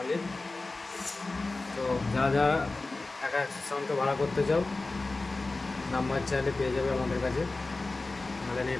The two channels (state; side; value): quieter; right; 3.3 dB